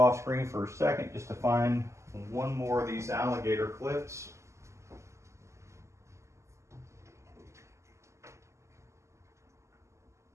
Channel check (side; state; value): left; late; 0.14 ms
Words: off screen for a second just to find one more of these alligator clips.